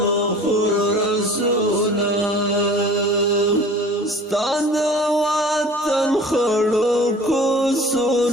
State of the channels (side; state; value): both; normal; correlation 0.45